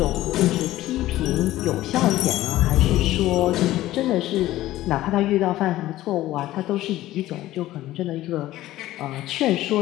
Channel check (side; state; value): right; quieter; 15.4 dB